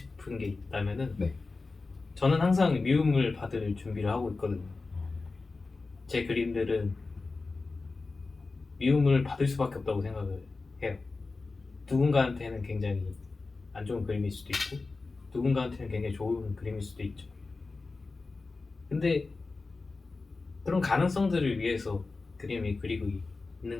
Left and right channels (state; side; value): quieter; right; 3.8 dB